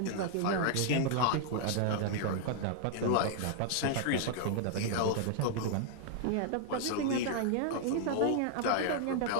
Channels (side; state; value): both; different; correlation 0.00